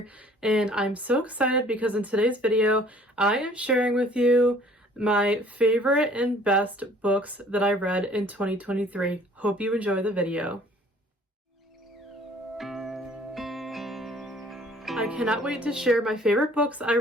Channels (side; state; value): both; normal; correlation 0.55